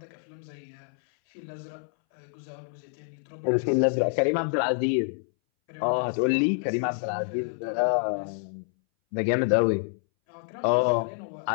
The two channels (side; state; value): right; silent; 60 dB below the other